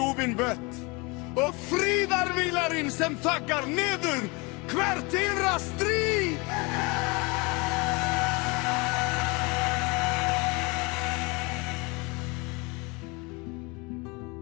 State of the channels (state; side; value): quieter; right; 27.6 dB